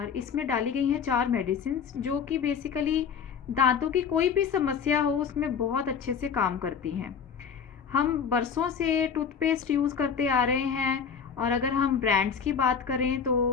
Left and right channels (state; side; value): quieter; right; 6.8 dB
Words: इसमें डाली गई हैं 4 मेडिसिन्स जो कि बेसिकली दांतों की कोई भी समस्या हो उसमें बहुत अच्छे से काम करती हैं। हम बरसों से टूथपेस्ट यूज़ करते आ रहे हैं और अगर हम ब्रांड्स की बात करें तो